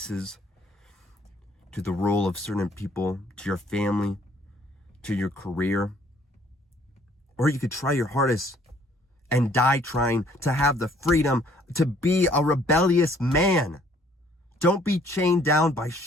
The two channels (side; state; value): both; normal; correlation 0.61